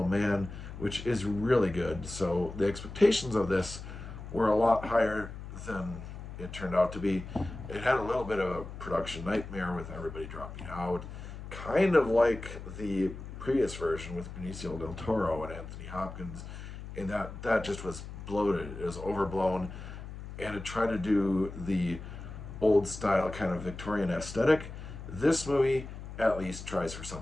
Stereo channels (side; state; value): left; noise; hum, 11 dB below the sound